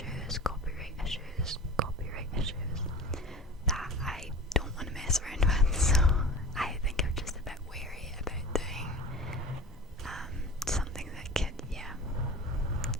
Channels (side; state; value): both; normal; correlation 0.36